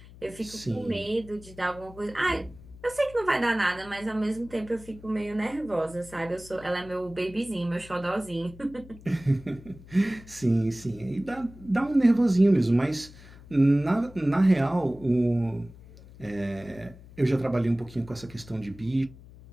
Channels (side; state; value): left; noise; hum, 20 dB below the sound